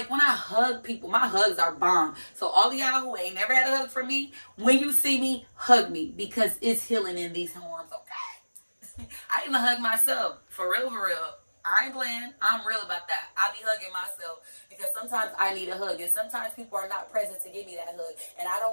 when I hug people, my hugs are bomb. So all of y'all who ain't never had a hug from me, when you see me, hug me, because it's healing in these arms, okay? I even hug myself. For real, for real. I ain't playing. I'm real about that. I be hugging myself because sometimes I need a hug, and sometimes people are not present to give me that hug, and I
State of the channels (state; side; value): inverted; both; correlation -1.00